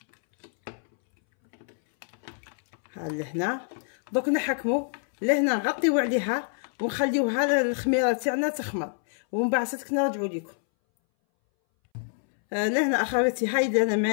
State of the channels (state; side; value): silent; right; 60 dB below the other